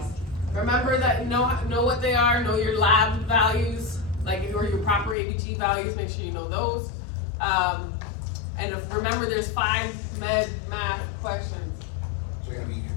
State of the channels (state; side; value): drops out; right; at 5.2 s